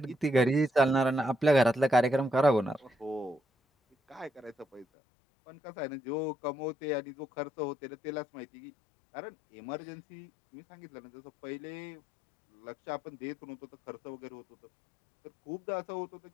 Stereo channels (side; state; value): right; drops out; at 4.9 s